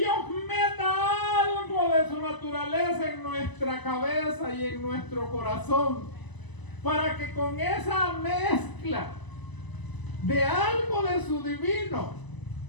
meta algo de su naturaleza en nuestra cabeza y en nuestro corazón, para que con esa mezcla de algo de su divino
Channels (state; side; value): late; right; 1.0 ms